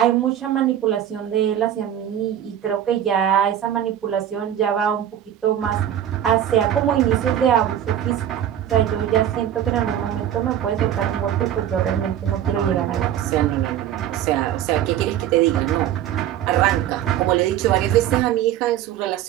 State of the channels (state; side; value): quieter; left; 10.8 dB